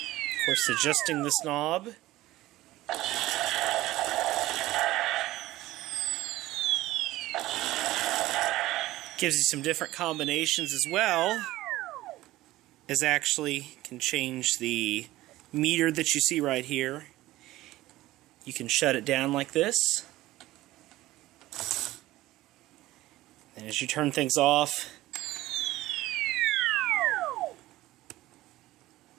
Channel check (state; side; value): quieter; left; 16.8 dB